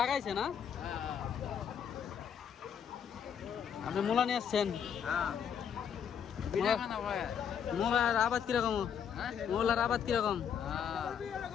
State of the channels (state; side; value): quieter; right; 8.0 dB